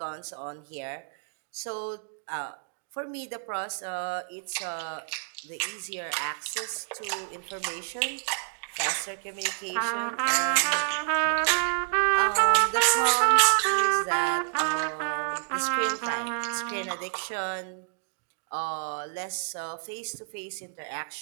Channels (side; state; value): left; silent; digital silence